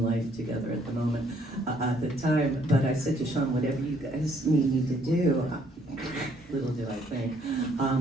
life together at the moment, at the time. But I said to Sean, whatever you guys need me to do, little did I think,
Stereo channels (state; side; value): normal; both; correlation 0.65